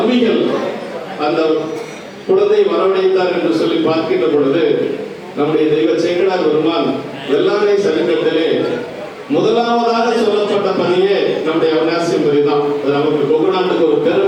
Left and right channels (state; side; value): identical; both; correlation 1.00